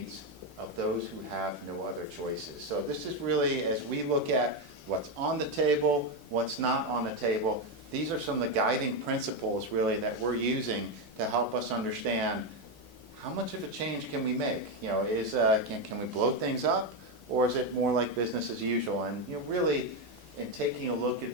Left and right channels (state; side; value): normal; both; correlation 0.08